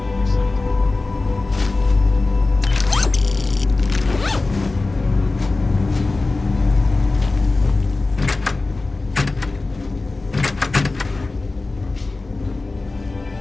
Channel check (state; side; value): quieter; right; 3.4 dB